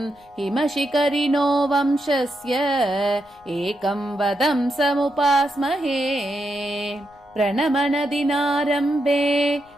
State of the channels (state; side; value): noise; left; rumble, 30 dB below the sound